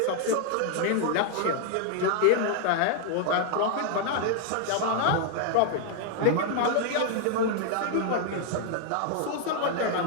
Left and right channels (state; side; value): different; both; correlation 0.00